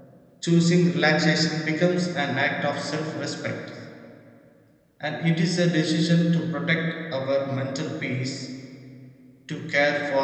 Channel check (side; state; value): both; identical; correlation 1.00